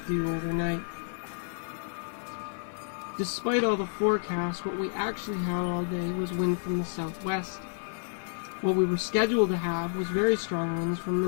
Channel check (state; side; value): silent; right; digital silence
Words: do overnight? Despite all the forecasts, what we actually had all day was wind from the southwest. What we were scheduled to have was very strong winds from the